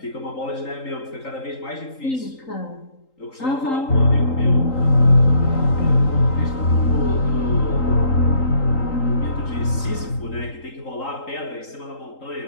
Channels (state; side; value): late; right; 3.8 ms